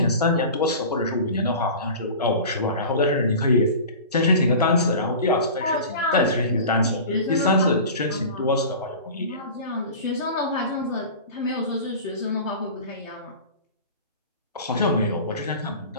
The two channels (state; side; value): inverted; both; correlation -0.36